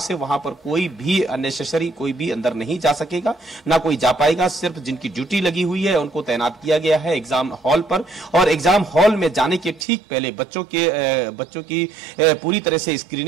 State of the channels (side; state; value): left; drops out; at 9.9 s